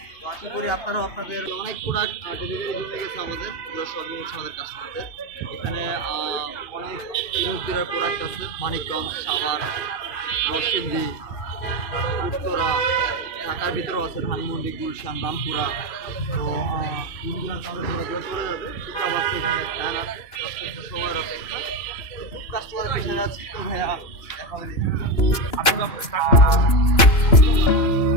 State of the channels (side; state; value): right; late; 2.9 ms